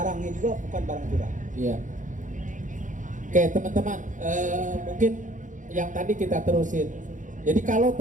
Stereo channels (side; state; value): left; late; 0.37 ms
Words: juga bukan barang curang. Iya. Oke teman-teman, mungkin yang tadi kita terusin. Jadi kalau